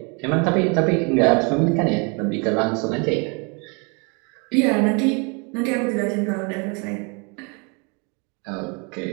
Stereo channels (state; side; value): quieter; left; 33.0 dB